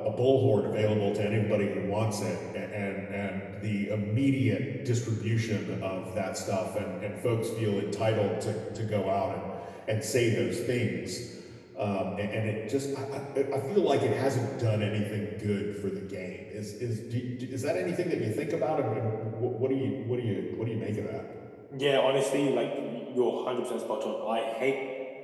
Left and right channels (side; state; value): both; identical; correlation 1.00